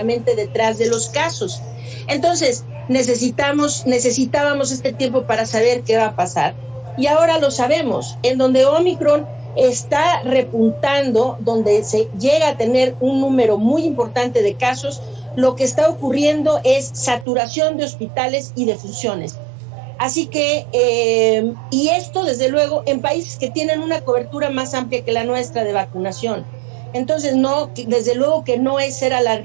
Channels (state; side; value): drops out; left; at 17.2 s